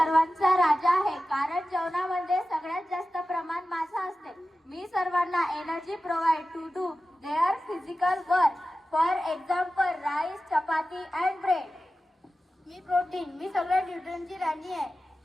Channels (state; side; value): normal; both; correlation 0.94